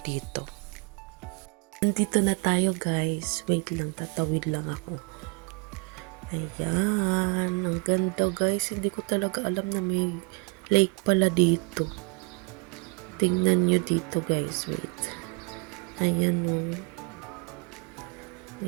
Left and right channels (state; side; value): quieter; left; 31.9 dB